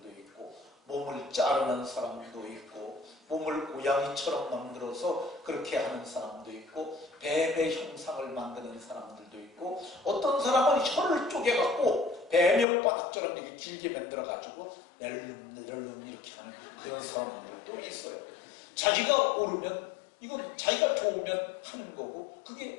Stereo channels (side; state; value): right; drops out; at 12.7 s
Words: 있고, 몸을 자르는 사람도 있고, 몸을 고양이처럼 만들어서 그렇게 하는 사람도 있고, 뱀의 형상을 만드는 사람들도 있고, 어떤 사람은 혀를 쪼개갖고 뱀혓바닥처럼 이렇게 길게 만들어가지고 낼름낼름 이렇게 하는 그런 사람들도 있어요. 자기가 옳으면, 이건 자기가 좋으면 하는 거고